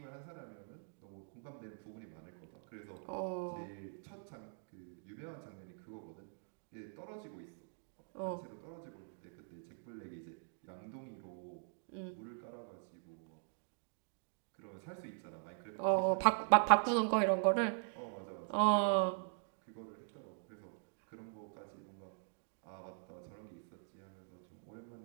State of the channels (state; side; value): silent; left; digital silence